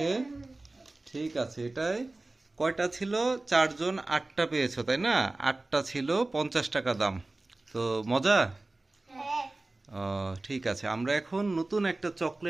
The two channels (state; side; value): quieter; left; 3.0 dB